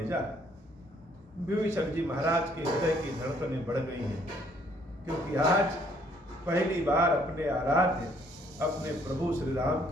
विभीषण जी महाराज के हृदय की धड़कनें बढ़ गई हैं, क्योंकि आज पहली बार अपने आराध्य, अपने प्रभु श्री राम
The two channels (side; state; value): both; normal; correlation 0.64